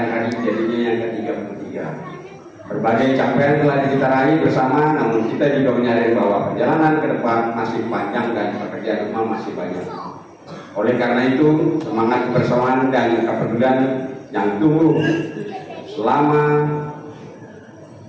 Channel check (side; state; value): both; identical; correlation 1.00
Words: hari jadinya yang ke-33. Berbagai capaian telah kita raih bersama, namun kita juga menyadari bahwa perjalanan ke depan masih panjang dan pekerjaan rumah masih banyak. Oleh karena itu, semangat kebersamaan dan kepedulian yang tumbuh selama